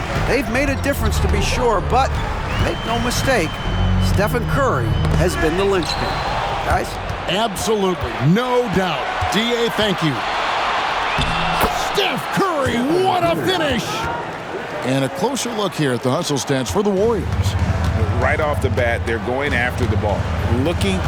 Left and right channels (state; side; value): identical; both; correlation 1.00